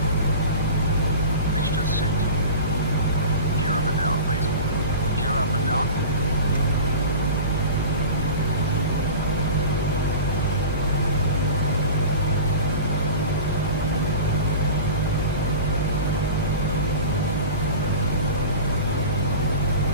Mixtures set. Gear up and down, please. Gear up and down.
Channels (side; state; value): both; inverted; correlation -0.34